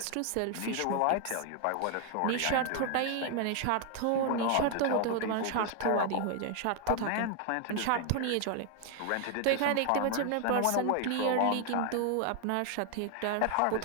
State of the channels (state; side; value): different; both; correlation 0.00